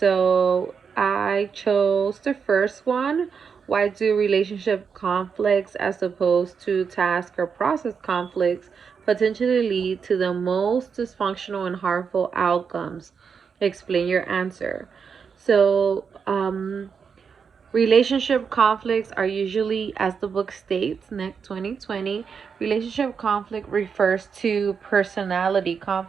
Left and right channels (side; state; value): left; quieter; 6.2 dB